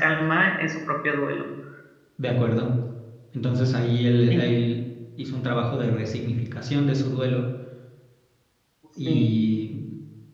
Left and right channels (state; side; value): identical; both; correlation 1.00